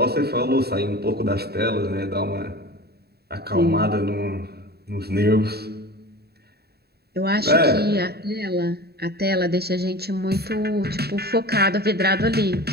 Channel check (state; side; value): late; left; 0.47 ms